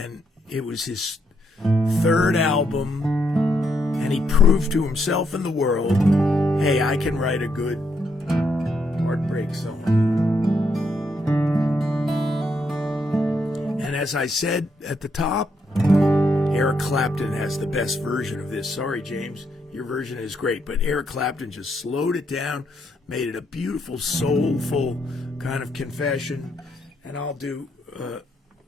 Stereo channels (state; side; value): normal; both; correlation 0.76